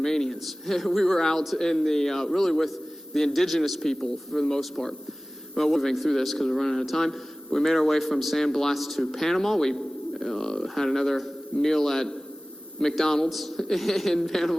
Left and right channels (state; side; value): normal; both; correlation 0.98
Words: We were out in the, really with the indigenous people for the most part. Well, we're moving through this because we're running out of time. We made our way from San Blas to Panama. We had another meal at McDonald's in